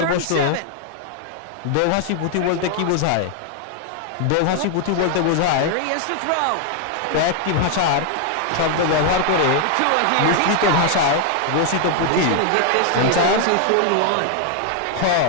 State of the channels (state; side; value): different; both; correlation 0.00